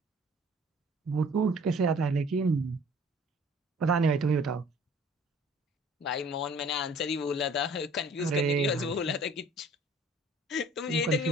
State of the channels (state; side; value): normal; both; correlation 0.52